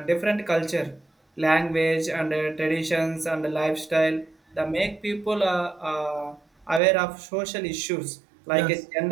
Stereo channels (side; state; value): left; drops out; at 6.8 s